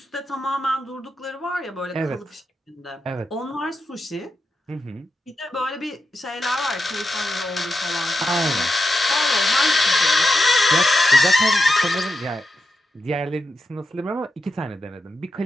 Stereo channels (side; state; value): both; normal; correlation 0.88